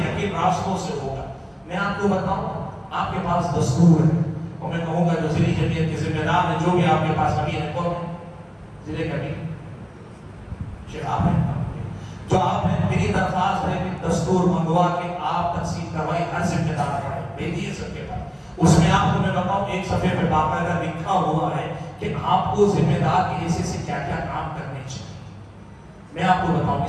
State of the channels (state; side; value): identical; both; correlation 1.00